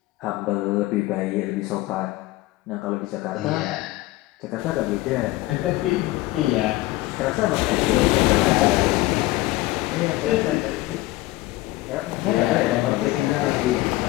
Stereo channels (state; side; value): quieter; right; 18.3 dB